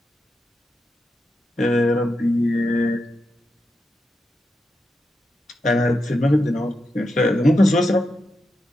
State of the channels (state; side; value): normal; both; correlation 0.87